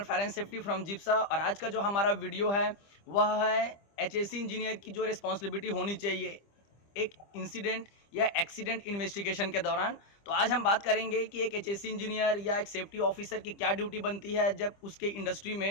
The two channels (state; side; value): late; right; 25 ms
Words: fire and safety from Jipsa. और आज का जो हमारा वीडियो है वह है एचएससी इंजीनियर की जो रिस्पॉन्सिबिलिटी होनी चाहिए एक इंसिडेंट या एक्सीडेंट इन्वेस्टिगेशन के दौरान। तो आज हम बात करेंगे कि एक एचएससी इंजीनियर या एक सेफ्टी ऑफिसर की क्या ड्यूटी बनती है जब उसके इंडस्ट्री